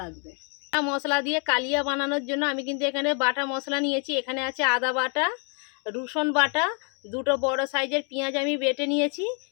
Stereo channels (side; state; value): right; quieter; 38.4 dB